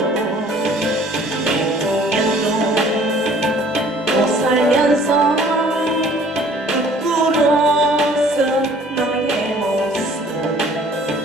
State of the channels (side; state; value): both; normal; correlation 0.54